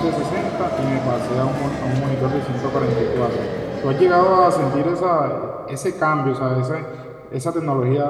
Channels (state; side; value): identical; both; correlation 1.00